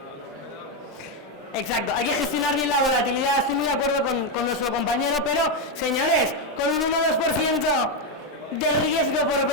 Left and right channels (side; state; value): both; normal; correlation 0.05